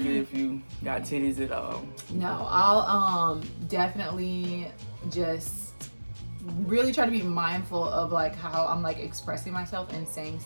it if you got titties at all. No, I'll definitely just really try to be mindful of like how I'm like expressing myself and saying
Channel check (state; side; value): inverted; both; correlation -1.00